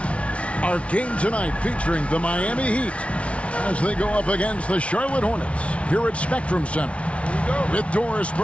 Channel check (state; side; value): late; right; 0.062 ms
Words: Our game tonight featuring the Miami Heat as they go up against the Charlotte Hornets here at Spectrum Center. With Doris